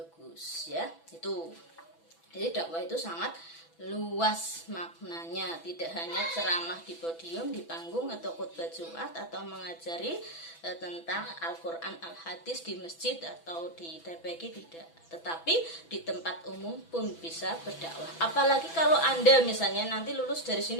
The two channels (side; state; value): right; late; 6.0 ms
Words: ya. Itu jadi dakwah itu sangat luas maknanya, tidak hanya ceramah di podium, di panggung atau khutbah Jumat atau mengajari tentang Al-Quran, Al-Hadis di masjid atau di TPQ, tidak, tetapi di tempat umum pun bisa berdakwah. Apalagi kalau Anda misalnya nanti lulus dari